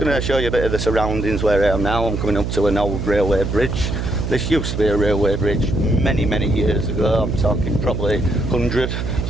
to show you a bit of the surroundings where I am now. I'm coming up to an old railway bridge. This used to be a railway bridge many years ago. I'm talking probably 100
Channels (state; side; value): noise; right; hum, 3 dB below the sound